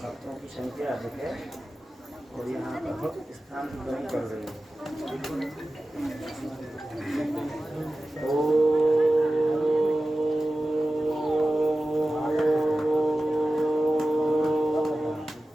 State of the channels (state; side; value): normal; both; correlation 0.95